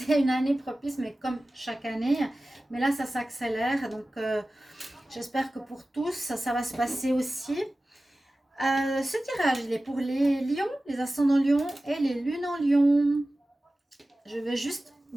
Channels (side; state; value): both; normal; correlation 0.96